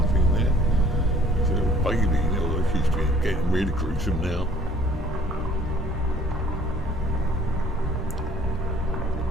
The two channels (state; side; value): normal; both; correlation 0.56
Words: there. There's a little baby, although she's getting really gruesome now.